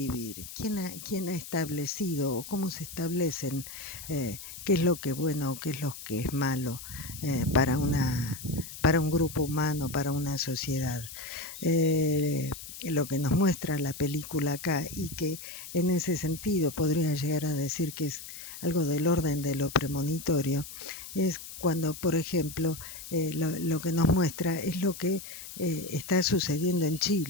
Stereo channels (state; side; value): noise; left; hiss, 12 dB below the sound